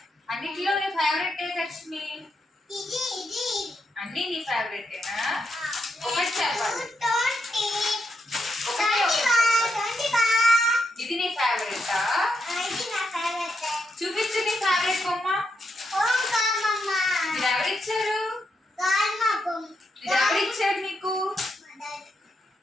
అన్నిటిలో నీ ఫేవరెట్ ఏ లక్ష్మి? అన్ని నీ ఫేవరెటేనా? ఒకటి చెప్పాలి. ఇది నీ ఫేవరెటా? చూపించు నీ ఫేవరెట్ బొమ్మ. ఇది ఎవరిచ్చారు? ఇది ఎవరిచ్చారు నీకు?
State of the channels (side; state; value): both; normal; correlation 0.82